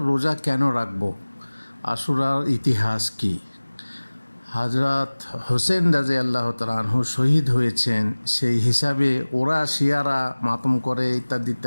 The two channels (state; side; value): inverted; both; correlation -1.00